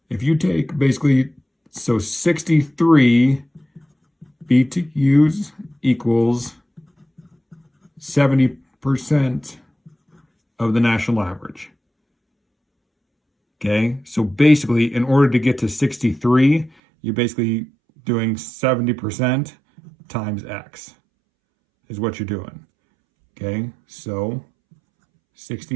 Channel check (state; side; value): drops out; left; at 16.7 s